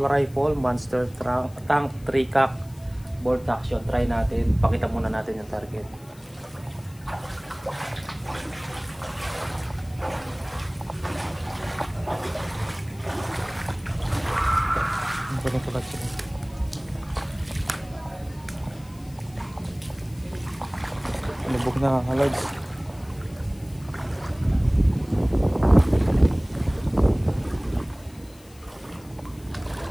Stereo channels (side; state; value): left; noise; hiss, 25 dB below the sound